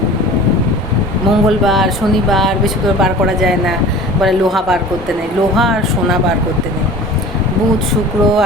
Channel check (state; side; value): normal; both; correlation 0.41